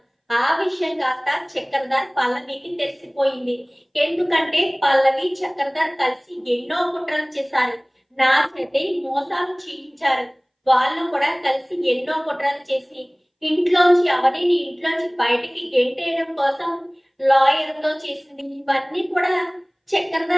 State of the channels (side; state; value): both; identical; correlation 1.00